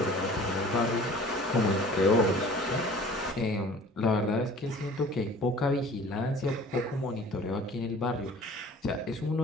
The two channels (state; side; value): normal; both; correlation 0.47